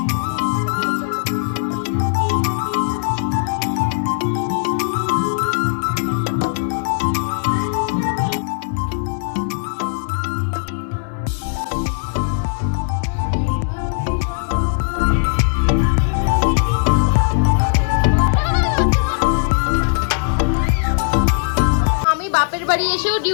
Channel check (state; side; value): silent; right; digital silence